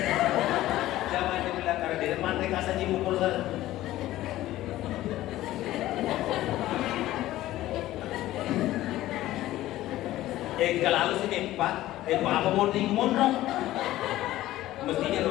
Jangan dibilang karena di depan mereka saja mukul saya. Kalau sini Pak, apa mau mondok? Mestinya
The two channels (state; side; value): quieter; right; 15.3 dB